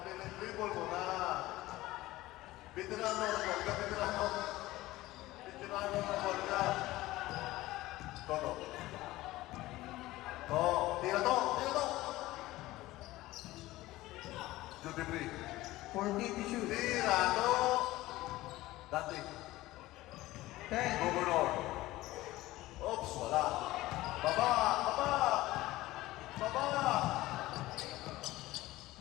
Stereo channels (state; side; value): quieter; right; 17.6 dB